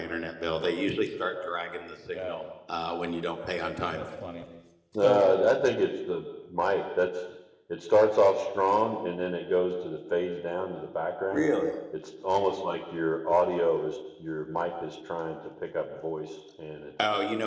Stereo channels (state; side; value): identical; both; correlation 1.00